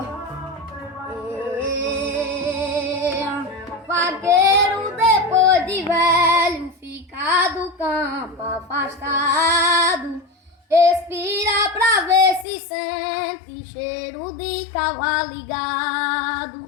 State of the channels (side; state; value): right; drops out; at 12.5 s